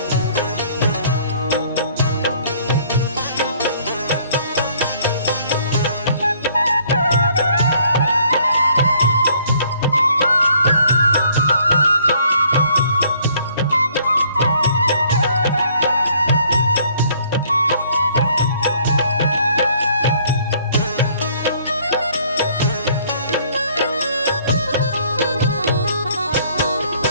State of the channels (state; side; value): inverted; both; correlation -0.61